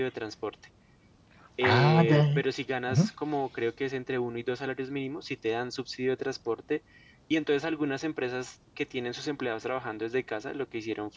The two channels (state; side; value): identical; both; correlation 1.00